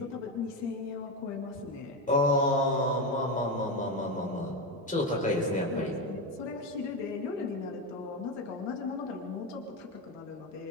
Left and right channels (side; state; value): both; normal; correlation 0.14